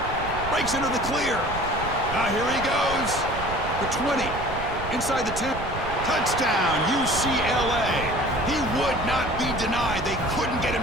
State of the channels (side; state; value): right; noise; rumble, 9 dB below the sound